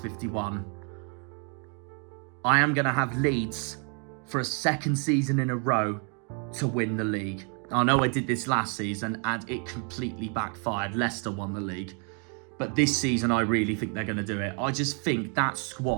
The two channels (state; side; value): quieter; left; 38.9 dB